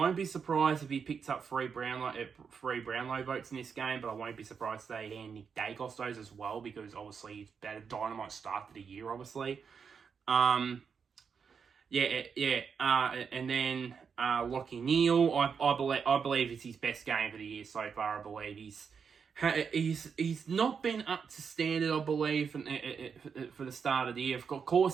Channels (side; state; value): left; quieter; 6.3 dB